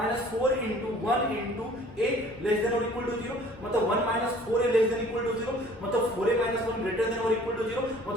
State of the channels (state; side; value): normal; both; correlation 0.52